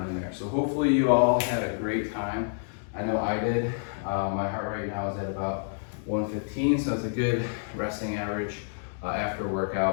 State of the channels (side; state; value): right; silent; digital silence